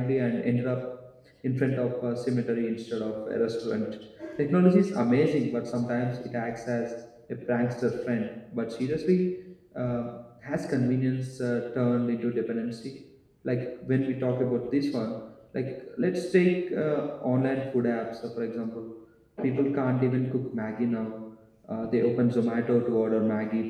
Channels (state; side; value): identical; both; correlation 1.00